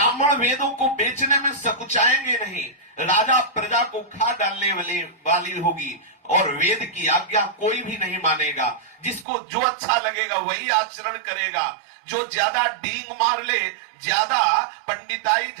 वेदों को बेचने में सकुचाएंगे नहीं। राजा प्रजा को खा डालने वाली होगी और वेद की आज्ञा कोई भी नहीं मानेगा। जिसको जो अच्छा लगेगा वही आचरण करेगा। जो ज्यादा डींग मार ले, ज्यादा पंडिताई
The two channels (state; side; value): drops out; left; at 9.2 s